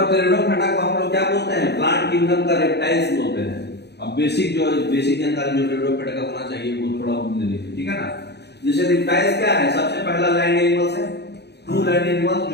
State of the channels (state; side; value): late; right; 0.49 ms